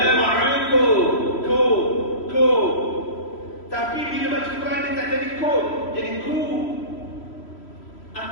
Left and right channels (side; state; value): right; late; 3.1 ms